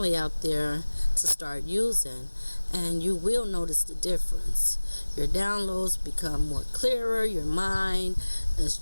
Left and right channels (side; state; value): both; inverted; correlation -1.00